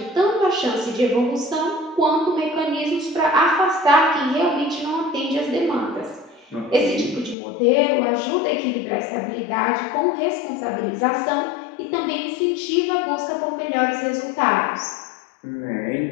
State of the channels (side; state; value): right; drops out; at 7.4 s